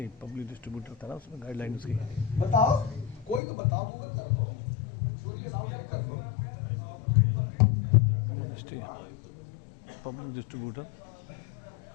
पब्लिक डिस्ट्रीब्यूटर था ना, उसमें गाइडलाइन उसकी। बताओ, कोई तो बताओ। गूगल कर दो, सूर्य नाम कर दो। मिनिस्ट्री पब्लिक डिस्ट्रीब्यूटर,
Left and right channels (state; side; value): drops out; right; at 3.4 s